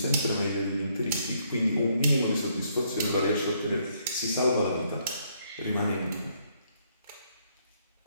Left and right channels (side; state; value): both; inverted; correlation -0.71